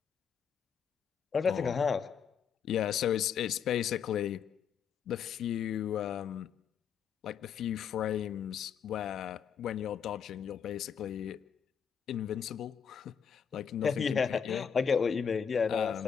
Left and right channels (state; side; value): quieter; right; 7.4 dB